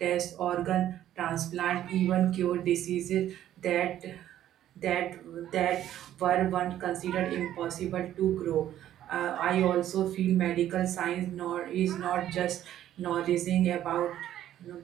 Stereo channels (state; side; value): quieter; left; 12.0 dB